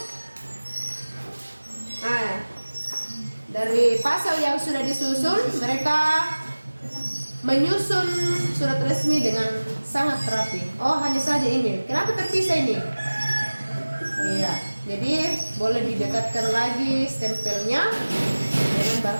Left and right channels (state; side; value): inverted; both; correlation -1.00